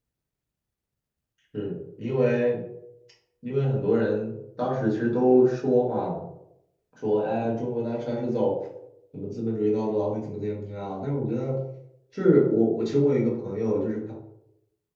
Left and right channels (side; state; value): both; identical; correlation 1.00